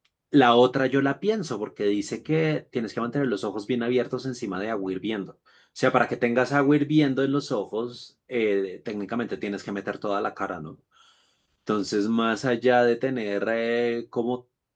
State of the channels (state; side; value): identical; both; correlation 1.00